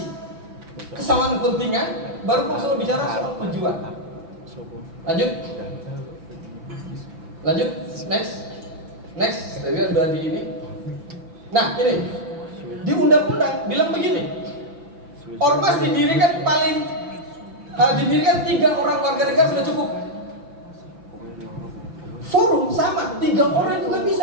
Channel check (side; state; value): left; late; 5.9 ms